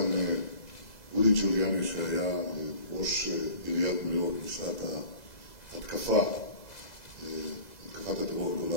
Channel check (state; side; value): late; right; 2.0 ms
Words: רודי ג'וליאני שהיה ראש עיריית ניו יורק בשעת התקפת הטרור